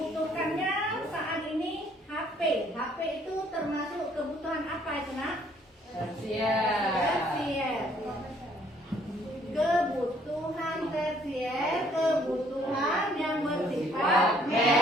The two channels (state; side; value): normal; both; correlation 0.63